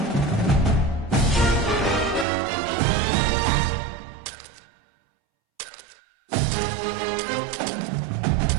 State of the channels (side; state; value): left; drops out; at 2.2 s